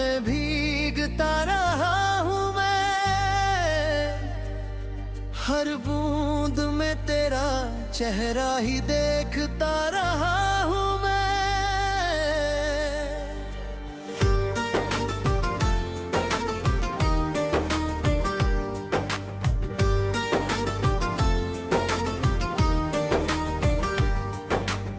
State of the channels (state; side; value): identical; both; correlation 1.00